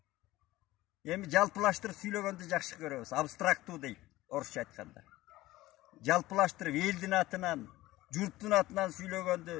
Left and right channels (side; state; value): right; quieter; 17.4 dB